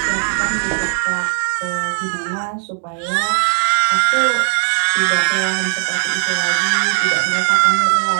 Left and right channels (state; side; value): silent; left; digital silence